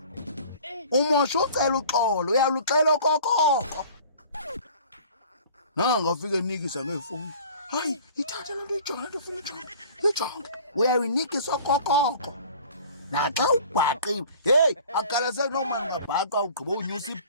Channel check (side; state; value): both; inverted; correlation -0.46